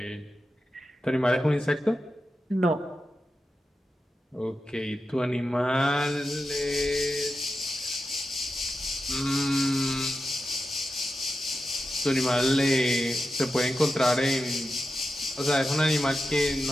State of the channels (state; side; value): normal; both; correlation 0.90